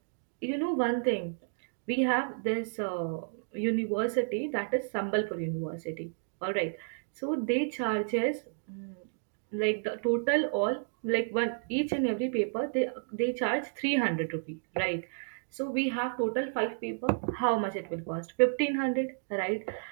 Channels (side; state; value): left; silent; digital silence